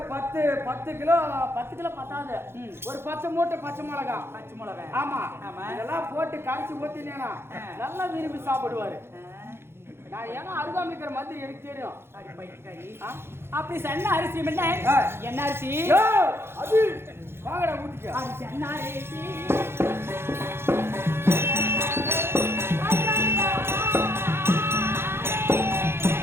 10 கிலோ பத்தாது, ஒரு 10 மூட்டை பச்சை மிளகா. ஆமா இதெல்லாம் போட்டு கரைச்சி ஊத்தினேனா நல்லா விரும்பி சாப்பிடுவாரு. நான் ஏன்னா அருகாமல் இருக்கிற மாதிரி எனக்கு தெரியும். அப்படி சன்ன அரிசி என்ன அரிசி? அது வாங்கடா வீட்டுக்கு. என்ன அரிசி?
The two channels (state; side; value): late; left; 0.12 ms